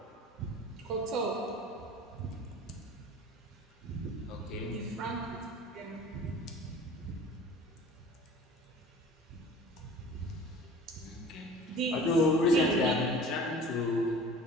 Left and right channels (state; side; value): normal; both; correlation 0.43